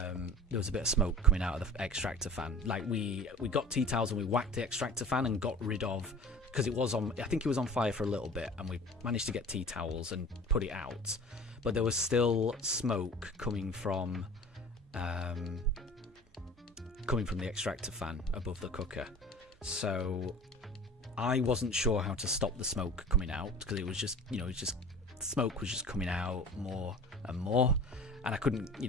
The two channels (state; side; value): normal; both; correlation 0.41